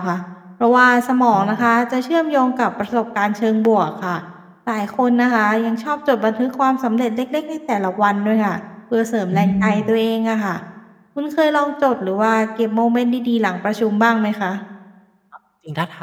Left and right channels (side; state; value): both; identical; correlation 1.00